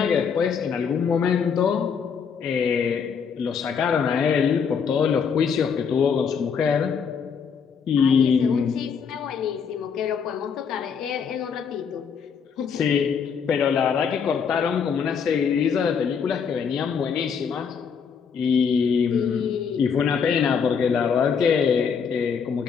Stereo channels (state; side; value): quieter; right; 6.5 dB